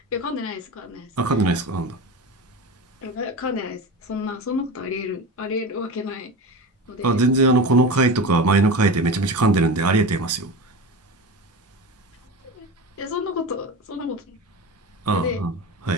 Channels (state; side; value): normal; both; correlation 0.27